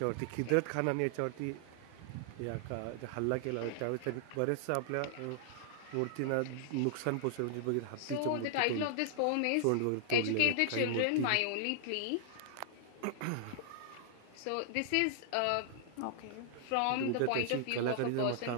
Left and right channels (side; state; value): both; different; correlation -0.01